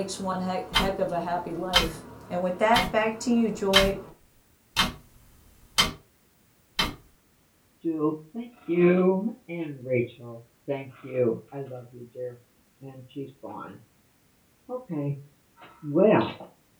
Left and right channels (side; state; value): both; identical; correlation 1.00